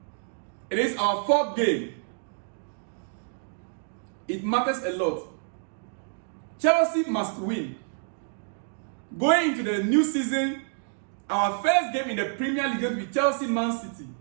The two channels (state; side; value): silent; left; digital silence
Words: It is our fourth game. It matters a lot. Chelsea must win. Going into the new season, our first game in the Premier League is going to be Chelsea-Man City.